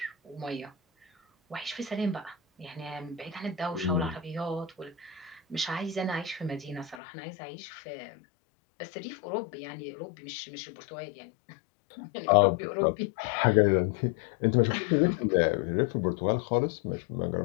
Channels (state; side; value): drops out; right; at 7.0 s